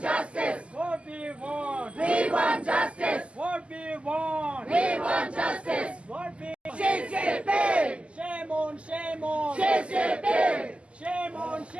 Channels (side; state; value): left; late; 0.056 ms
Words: justice. What we want justice. What we want justice. What we CCP. Shame on, shame on. CCP. Shame on,